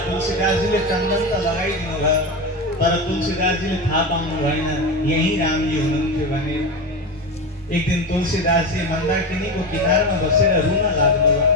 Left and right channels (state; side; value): normal; both; correlation 0.20